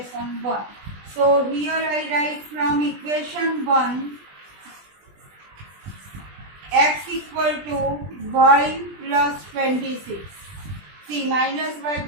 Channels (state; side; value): late; left; 20 ms